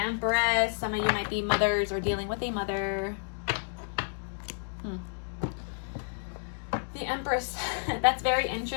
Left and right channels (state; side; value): silent; right; digital silence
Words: Some of you might be mothers or dealing with a mother. The Empress. That's very